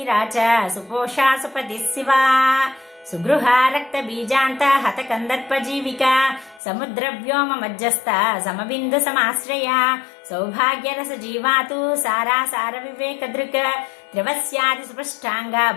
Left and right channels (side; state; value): right; drops out; at 6.6 s